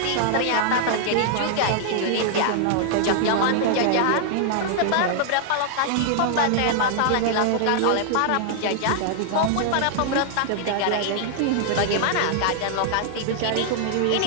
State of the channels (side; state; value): both; different; correlation -0.01